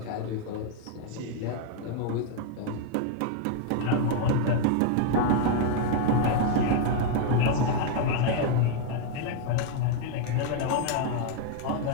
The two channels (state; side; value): different; both; correlation 0.00